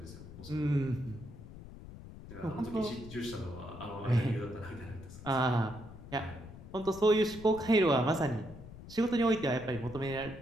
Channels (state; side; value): noise; left; rumble, 15 dB below the sound